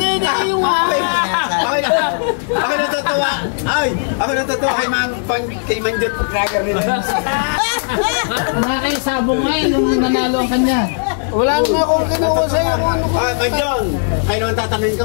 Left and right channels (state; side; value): silent; right; 69 dB below the other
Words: yun. Dahil yung akin. Ako natutuwa. Ay, ako natutuwa kay Manjot Paglagar nila. Nakakisabong nga eh, nung nanalo ang kanya. Wala naman akong kinuha sa'yo kung ano ka. Manjon, kayo naman tatanungin